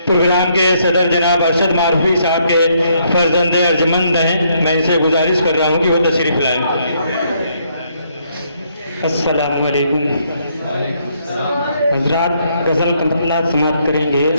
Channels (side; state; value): both; inverted; correlation -0.71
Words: پروگرام کے صدر جناب ارشد معروفی صاحب کے فرزند ارجمند ہیں، میں ان سے گزارش کر رہا ہوں کہ وہ تشریف لائیں۔ السلام علیکم حضرات، غزل کا مطلع سماعت کریں گے۔